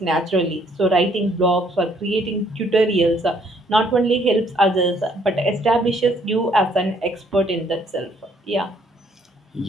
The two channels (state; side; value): normal; both; correlation 0.65